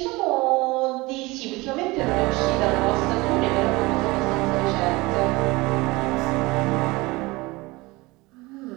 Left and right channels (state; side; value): quieter; left; 22.5 dB